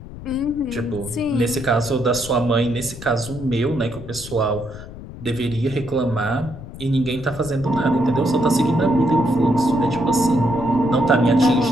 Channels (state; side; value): noise; left; rumble, 13 dB below the sound